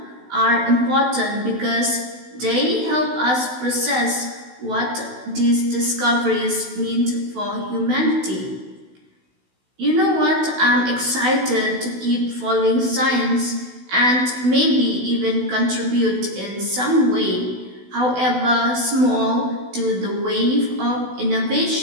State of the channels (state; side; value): late; left; 16 ms